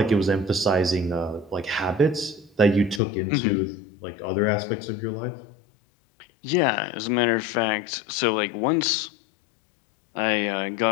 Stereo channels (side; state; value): right; drops out; at 3.0 s